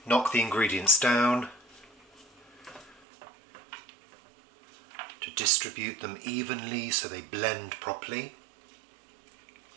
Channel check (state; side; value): drops out; left; at 3.0 s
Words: knock the ingredients down to distribute them evenly so they blend properly.